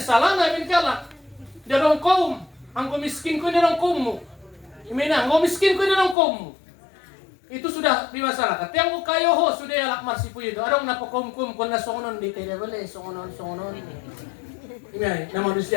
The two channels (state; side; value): drops out; right; at 6.2 s